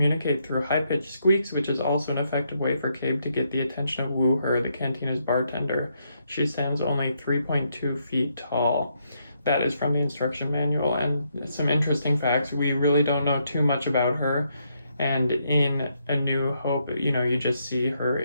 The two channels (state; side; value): inverted; both; correlation -0.76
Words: through high-pitched squeaks, which is also an effective way for Cabe to get the attention of Woo-Her, the Cantina's bartender. She stands only 3.2 feet tall. That is from the instruction manual, and some interesting facts. We really don't know too much about her, and in A New Hope, you just see her